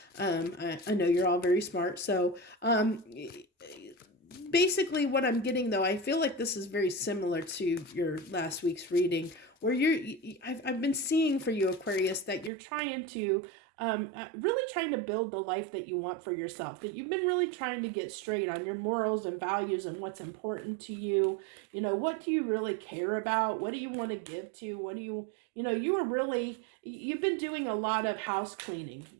I know you're all very smart, so basically what I'm getting, though, I feel like this is very similar to your last week's reading, where I've been seeing for you, Aquarius, that you're trying to really trying to build the life that you want for yourself, that you've been really trying to get straight on your morals and values and what's important to you. What do you really care about? What do you want to give to? What do you've been doing a lot of house cleaning,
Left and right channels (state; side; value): drops out; left; at 12.5 s